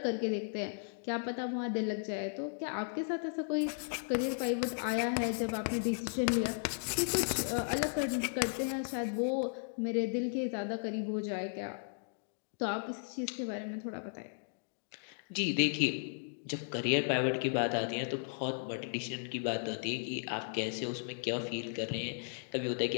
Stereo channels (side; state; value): right; silent; digital silence